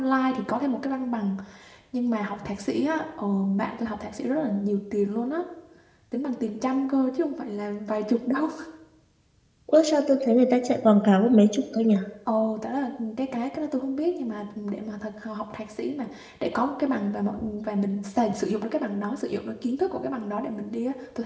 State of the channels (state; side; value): identical; both; correlation 1.00